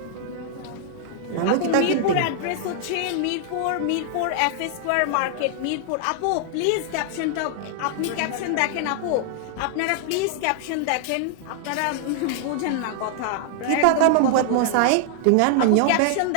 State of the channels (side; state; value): both; different; correlation 0.00